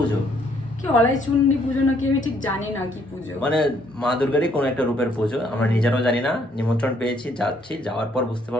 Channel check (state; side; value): normal; both; correlation 0.67